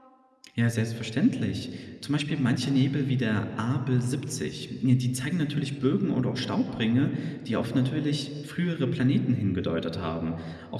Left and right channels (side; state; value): both; identical; correlation 1.00